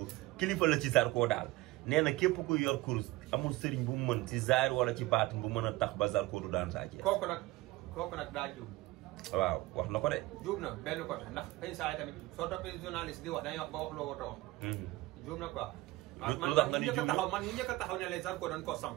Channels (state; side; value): quieter; left; 19.6 dB